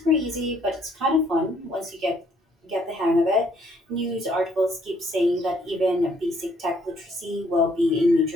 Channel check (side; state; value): both; normal; correlation 0.66